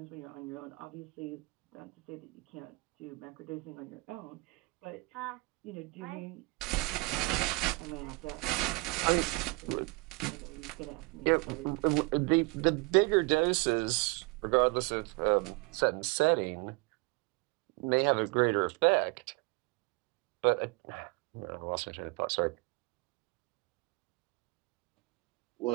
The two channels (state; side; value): quieter; left; 26.5 dB